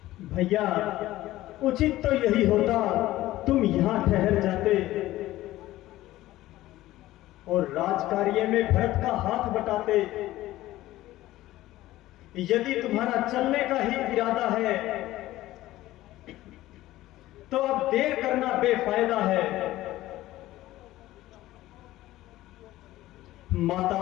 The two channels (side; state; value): right; quieter; 16.0 dB